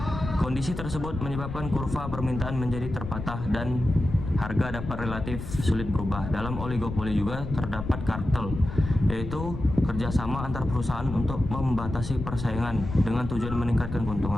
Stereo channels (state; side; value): noise; left; rumble, 7 dB below the sound